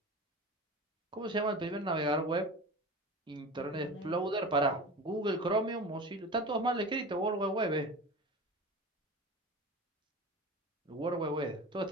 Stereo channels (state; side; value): normal; both; correlation 0.32